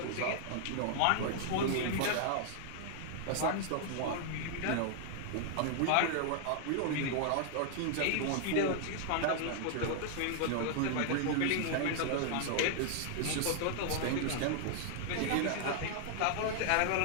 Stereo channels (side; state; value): both; different; correlation 0.00